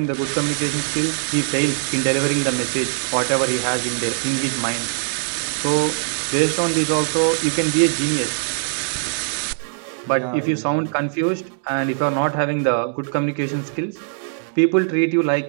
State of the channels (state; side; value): silent; left; digital silence